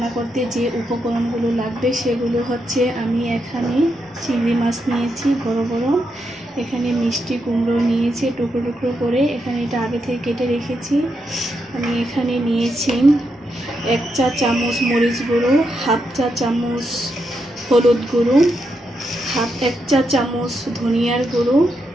করতে যে উপকরণগুলো লাগবে সেগুলো হচ্ছে, আমি এখানে চিংড়ি মাছ নিয়েছি বড় বড়, এখানে মিষ্টি কুমড়ো নিয়েছি টুকরো টুকরো করে, এখানে এটা আগে থেকে কেটে রেখেছি। আমি এখানে নিয়েছি 1 চা চামচ মরিচ গুঁড়ো, 1/2 চা চামচ হলুদ গুঁড়ো, 1 চা চামচ ধনিয়ার গুঁড়ো,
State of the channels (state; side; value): normal; both; correlation 0.82